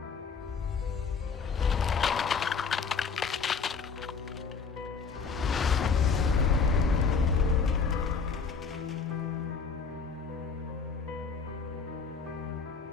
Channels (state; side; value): quieter; right; 5.4 dB